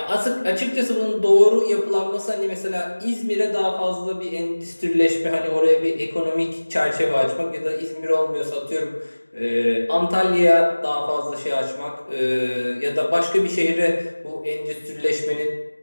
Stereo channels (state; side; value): inverted; both; correlation -1.00